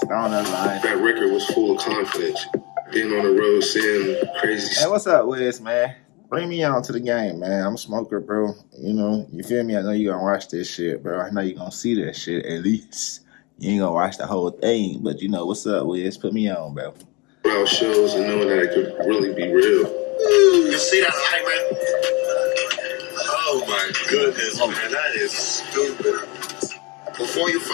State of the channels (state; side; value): quieter; right; 27.1 dB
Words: StonerLife. That record was full of confidence. Being on the road, seeing crazy Hey, what's up, Wiz, man? Bring me on to the game, man. I'm a smoker, bro. You feel me? I know you gonna watch this shit, bro. I know you gonna see that shit at least. You ain't gonna watch the whole thing, but what's up, Wiz? Put me on, bro. crowd shows and knowing that it could really be real. You see that light, man? Oh my goodness, man, that is stupid. Before you